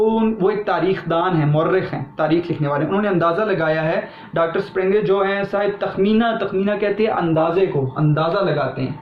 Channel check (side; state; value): both; identical; correlation 1.00